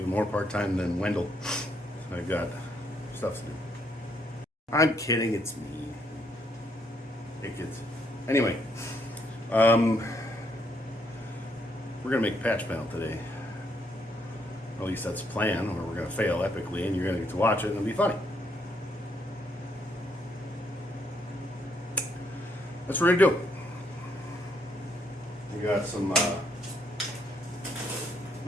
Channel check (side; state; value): both; normal; correlation 0.73